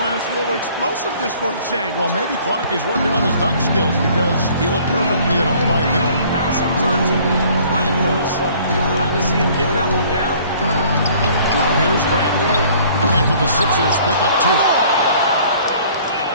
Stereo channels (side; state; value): both; inverted; correlation -0.55